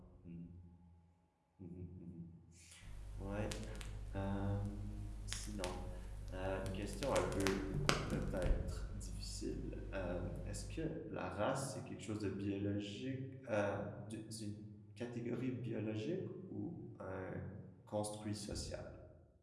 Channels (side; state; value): both; identical; correlation 1.00